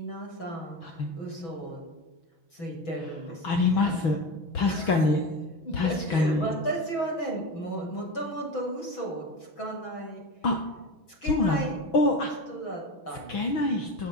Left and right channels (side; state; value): right; late; 6.1 ms